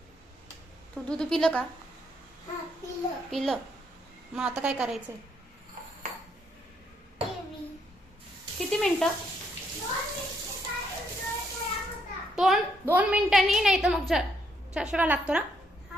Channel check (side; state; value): both; normal; correlation 0.73